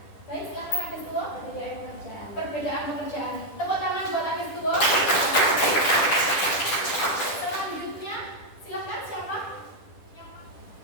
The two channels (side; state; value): right; late; 10 ms